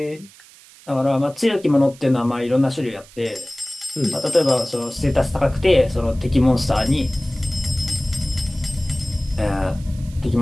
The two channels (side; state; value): right; noise; hiss, 23 dB below the sound